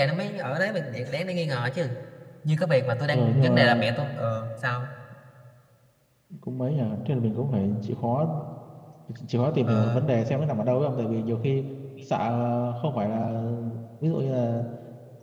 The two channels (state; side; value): identical; both; correlation 1.00